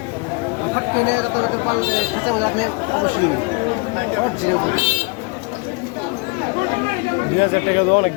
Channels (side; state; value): right; quieter; 30.0 dB